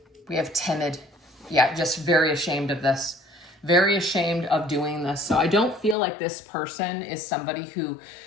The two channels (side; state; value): right; drops out; at 6.0 s